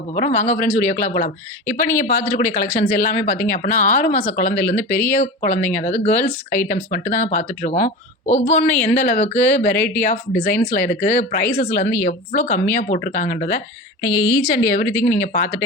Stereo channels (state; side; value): normal; both; correlation 0.29